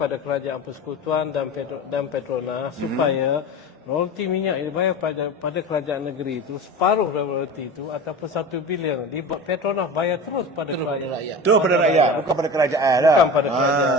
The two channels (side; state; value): both; normal; correlation 0.31